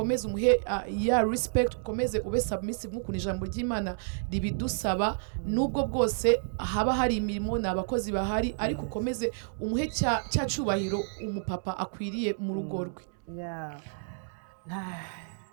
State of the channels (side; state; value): left; silent; digital silence